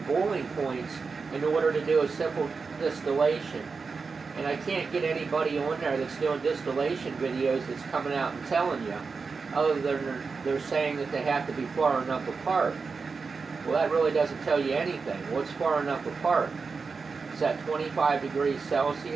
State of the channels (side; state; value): left; quieter; 4.8 dB